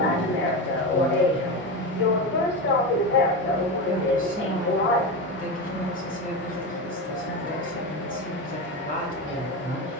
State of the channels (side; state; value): both; normal; correlation 0.19